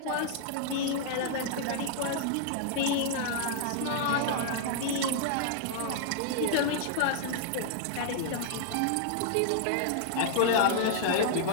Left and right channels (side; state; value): both; different; correlation -0.01